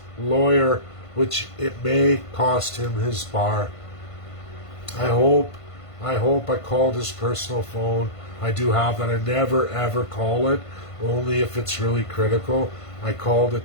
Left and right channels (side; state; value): right; late; 1.5 ms